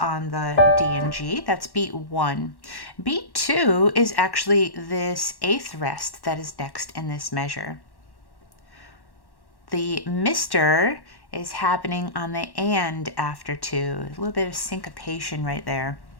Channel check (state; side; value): late; right; 1.1 ms